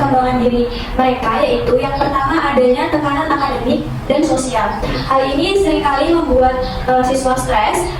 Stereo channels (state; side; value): identical; both; correlation 1.00